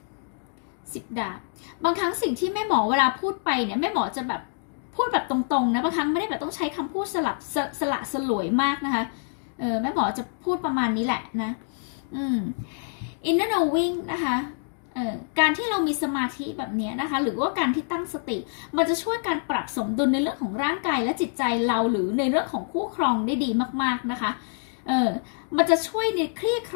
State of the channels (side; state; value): right; silent; digital silence